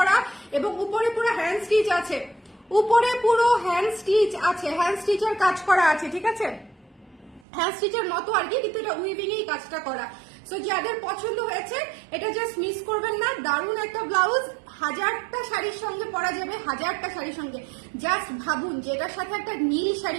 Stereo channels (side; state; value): left; drops out; at 7.4 s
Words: এবং উপরে পুরো হ্যান্ড স্টিচ আছে, উপরে পুরো হ্যান্ড স্টিচ আছে, হ্যান্ড স্টিচের কাজ করা আছে, ঠিক আছে। হ্যান্ড স্টিচের মতো আর কি, কিন্তু এটা উইভিং এই কাজটা করা। সো যাদের পছন্দ হয়েছে এটা জাস্ট মিস করবেন না, দারুণ একটা ব্লাউজ, 1000টা শাড়ির সঙ্গে পরা যাবে, 1000টা শাড়ির সঙ্গে। জাস্ট ভাবুন যে এটার সাথে একটা নীল